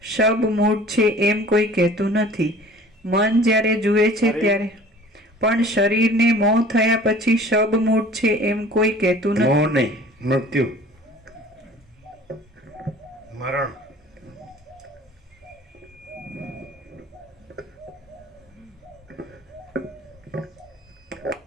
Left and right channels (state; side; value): normal; both; correlation 0.47